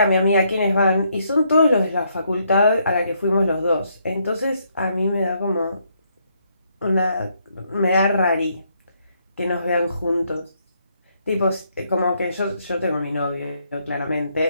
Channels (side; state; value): both; inverted; correlation -0.73